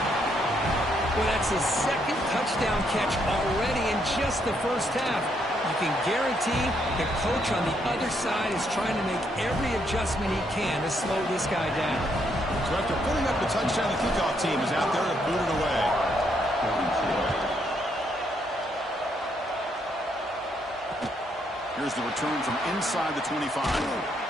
Well, that's his second touchdown catch already in just the first half. You can guarantee the coach on the other side is trying to make every adjustment he can to slow this guy down. So after putting up the touchdown, the kickoff team is out there to boot it away. Here's the return from inside the 25.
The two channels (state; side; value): normal; both; correlation 0.74